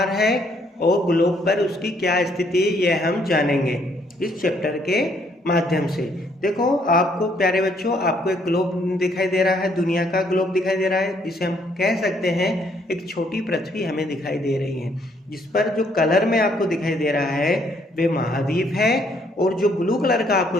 है और ग्लोब पर उसकी क्या स्थिति है, यह हम जानेंगे इस चैप्टर के माध्यम से। देखो, आपको प्यारे बच्चों, आपको एक ग्लोब दिखाई दे रहा है, दुनिया का ग्लोब दिखाई दे रहा है। इसे हम कह सकते हैं एक छोटी पृथ्वी हमें दिखाई दे रही है, जिस पर जो कलर में आपको दिखाई दे रहा है वह महाद्वीप है, और जो ब्लू कलर का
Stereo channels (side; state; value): both; normal; correlation 0.68